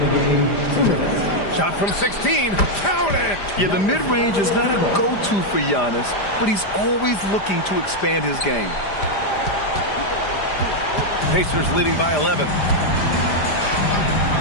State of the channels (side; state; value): right; late; 5.0 ms